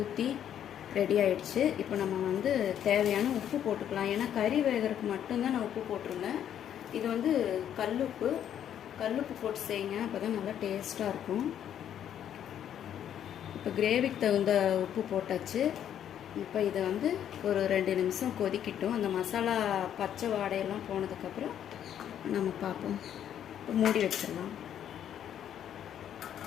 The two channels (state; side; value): quieter; right; 9.9 dB